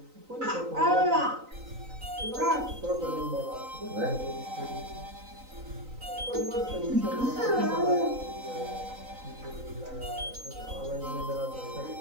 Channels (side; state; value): left; late; 3.9 ms